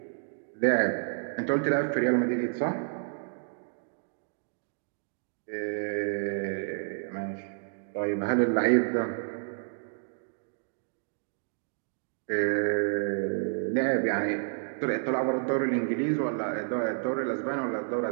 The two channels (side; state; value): left; silent; digital silence